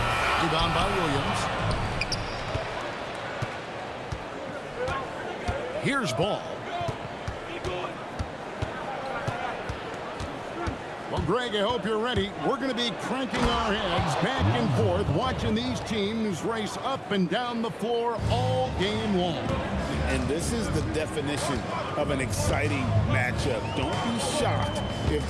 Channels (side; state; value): both; identical; correlation 1.00